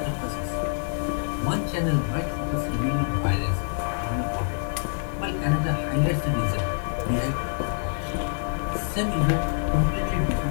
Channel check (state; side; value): silent; right; 61 dB below the other